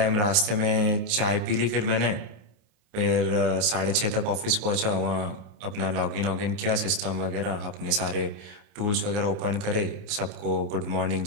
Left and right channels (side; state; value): left; late; 29 ms